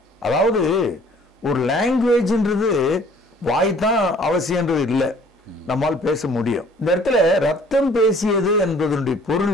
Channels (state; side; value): normal; both; correlation 0.55